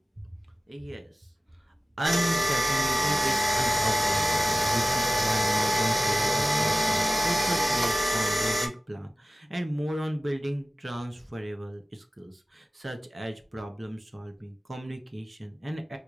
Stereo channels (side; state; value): both; normal; correlation 0.95